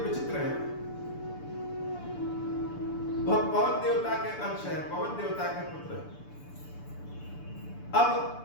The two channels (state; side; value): late; right; 6.9 ms